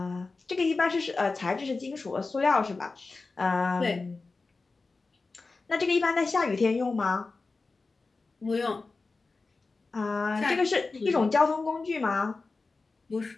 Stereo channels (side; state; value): right; quieter; 3.8 dB